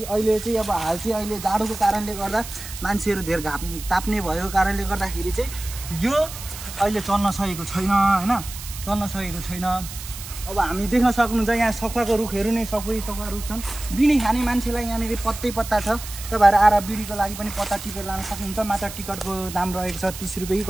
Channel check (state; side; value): noise; right; hiss, 11 dB below the sound